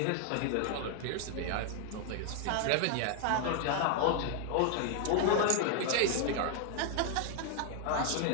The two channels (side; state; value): both; different; correlation 0.00